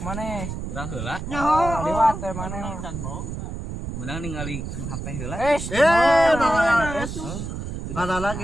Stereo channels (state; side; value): noise; right; rumble, 6 dB below the sound